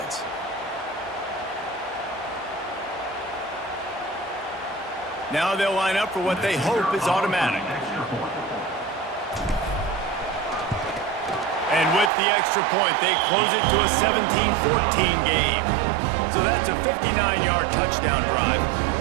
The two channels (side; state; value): left; drops out; at 12.1 s